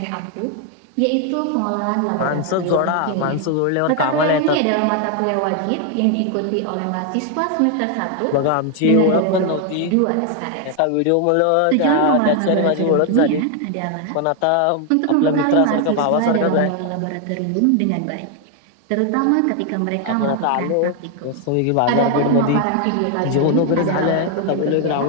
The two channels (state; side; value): different; both; correlation 0.00